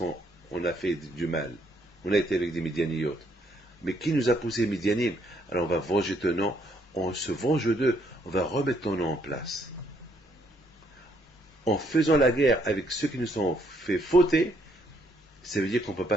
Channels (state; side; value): normal; both; correlation 0.70